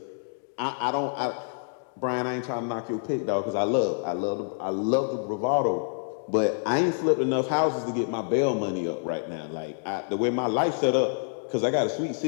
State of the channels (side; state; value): right; silent; digital silence